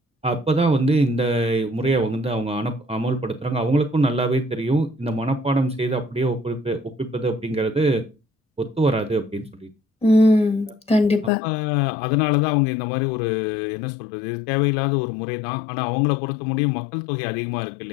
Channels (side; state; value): right; drops out; at 11.3 s